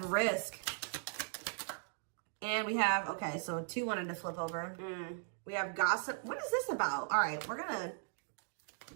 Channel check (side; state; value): left; silent; digital silence